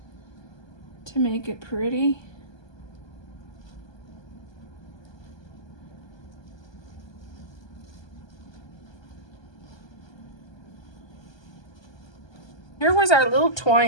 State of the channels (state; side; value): late; right; 1.2 ms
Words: to make it pretty. Here was our little